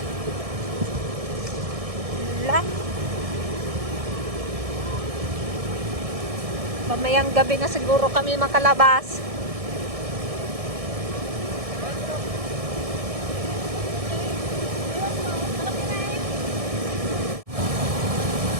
Wala. Mamayang gabi na siguro kami makalabas.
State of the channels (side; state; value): left; late; 1.6 ms